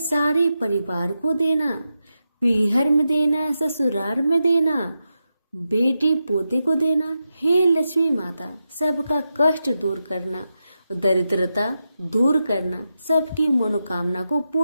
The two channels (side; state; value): both; inverted; correlation -0.89